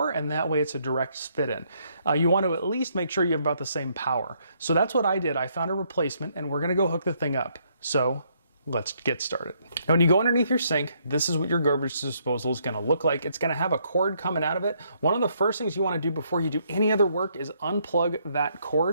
and that way it's a direct fit in. You want to at least make sure you have about the same power. So that's what I did. I found a replacement, and we're gonna go hook the thing up. So let's get started. Now, when you go underneath your sink, this is what your garbage disposal is gonna look like. It's gonna have a cord coming out of it. One of the first things you wanna do before you do any other work is unplug that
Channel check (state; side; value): inverted; both; correlation -0.72